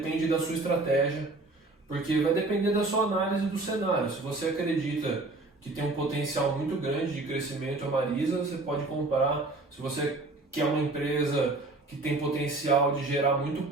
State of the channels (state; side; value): quieter; left; 3.1 dB